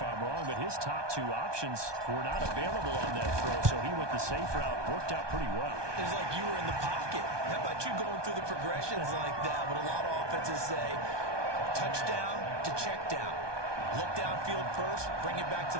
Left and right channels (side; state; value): left; late; 1.2 ms